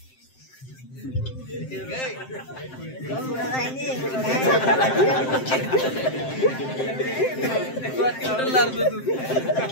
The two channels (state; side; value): late; right; 7.7 ms